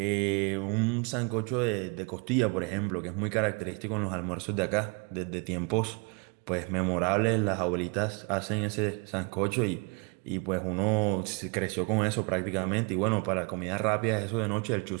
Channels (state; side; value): quieter; left; 31.4 dB